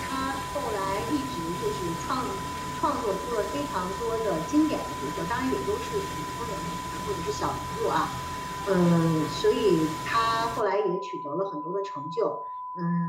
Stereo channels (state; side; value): identical; both; correlation 1.00